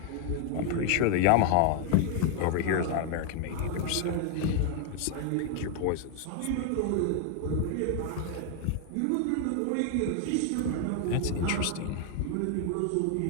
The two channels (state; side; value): different; both; correlation 0.00